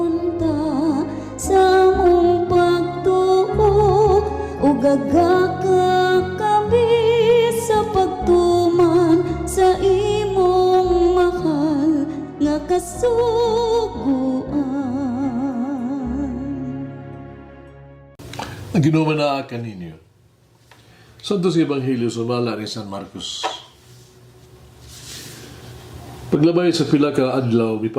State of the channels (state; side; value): identical; both; correlation 1.00